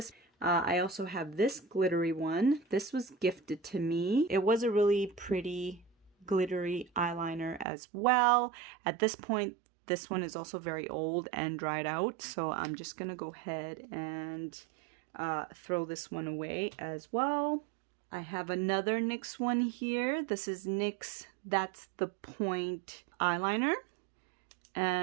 I also have this glittery one. This was gifted to me. It was a really pretty glittery eyeliner as well. At this point, this one is also very old and dried out. So I'm just gonna go ahead and throw this one away as well. I have another NYX one here. This is NYX That's the Point eyeliner.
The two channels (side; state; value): left; drops out; at 7.7 s